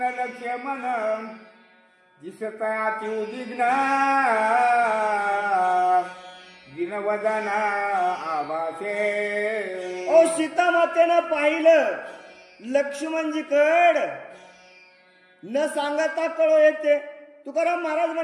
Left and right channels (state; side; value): identical; both; correlation 1.00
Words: लक्ष्मण दिसत अति उद्विग्न दिनवदन आभासे. सीता मातेनं पाहिलं लक्ष्मणजीकड, न सांगता कळो येते. तुकाराम महाराज